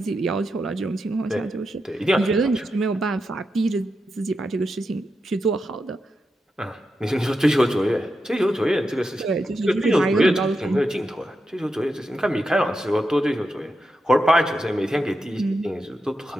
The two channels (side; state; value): both; normal; correlation 0.87